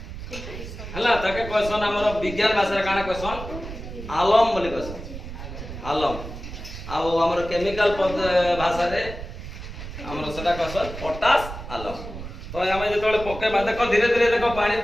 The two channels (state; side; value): noise; right; rumble, 10 dB below the sound